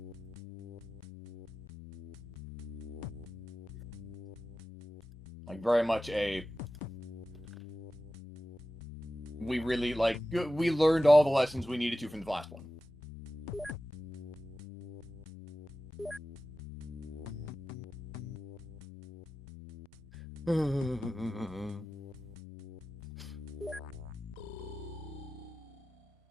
Like, very much a... We really, like, we learned all the lessons we needed to from the last one.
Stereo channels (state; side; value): normal; both; correlation 0.94